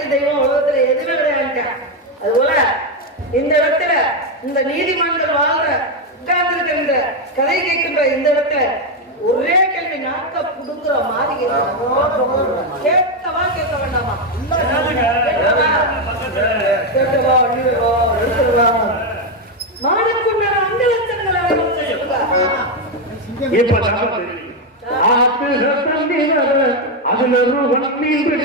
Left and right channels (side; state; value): both; normal; correlation 0.06